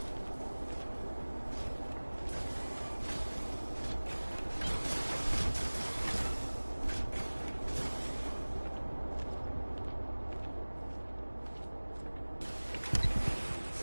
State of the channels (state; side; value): inverted; both; correlation -1.00